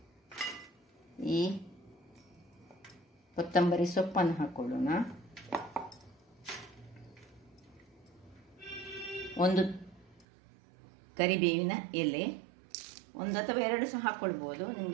ಈ ಕೊತ್ತಂಬರಿ ಸೊಪ್ಪನ್ನು ಹಾಕ್ಕೊಳ್ಳೋಣ. 1 ಕರಿಬೇವಿನ ಎಲೆ, 1 ಅಥವಾ 2 ಸಹ ಹಾಕ್ಕೊಳ್ಬೋದು,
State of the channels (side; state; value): left; drops out; at 10.2 s